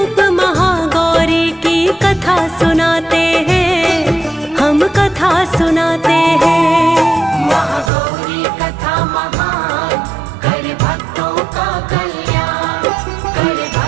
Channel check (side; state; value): left; drops out; at 7.9 s